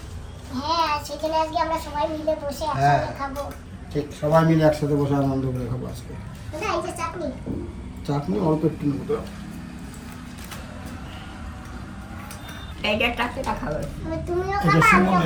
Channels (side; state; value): both; identical; correlation 1.00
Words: হ্যাঁ সেখানে আজকে আমরা সবাই মিলে বসে হ্যাঁ। একসাথে খাবো। ঠিক সবাই মিলে একসাথে বসে আনন্দ করে খাবো আজকে। দাদা এই যে চাটনি, চাটনি অল্প একটু নেবো তো। এইটা চারটেটা খাবে। তুমিও এটা খাবা আমিও